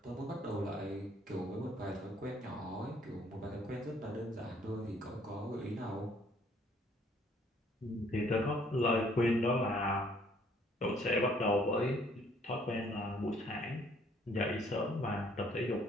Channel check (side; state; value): both; normal; correlation 0.62